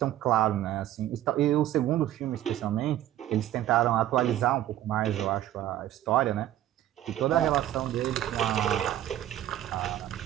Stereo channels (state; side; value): quieter; left; 12.8 dB